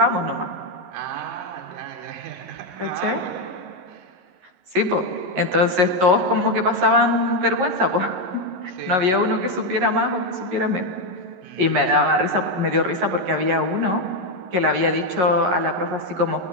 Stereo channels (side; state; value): left; late; 11 ms